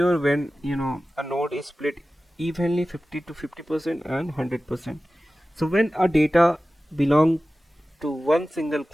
when a node is split evenly 50 to 50% and 100%. So when a data belong to one single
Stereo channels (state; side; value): normal; both; correlation 0.95